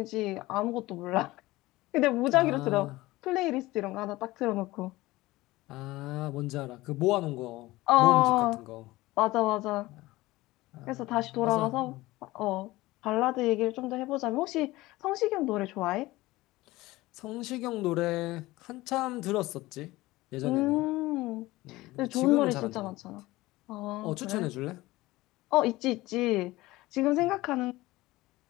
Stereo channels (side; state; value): right; quieter; 19.1 dB